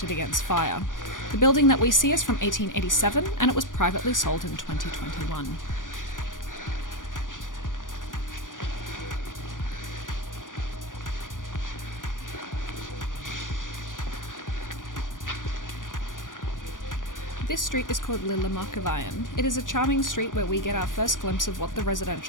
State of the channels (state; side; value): late; right; 0.88 ms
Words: against fire. The building that we see is from 1887, and it was privately sold in 2021. This street is called Lille Markeveien. It is a charming street where we get our first glimpse of what the